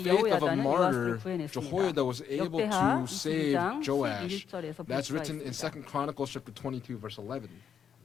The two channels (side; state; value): right; quieter; 7.9 dB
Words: faith of a 여호야다는 요아스를 martyr, 구해냈습니다. Jehoiada was able 역대하 to save 22장 Joash. 11절에서 볼 That's 수가 written in 있습니다. 2 Chronicles chapter 22, verse 11.